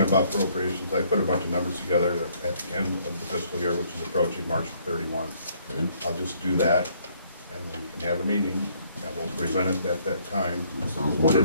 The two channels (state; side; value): inverted; both; correlation -0.65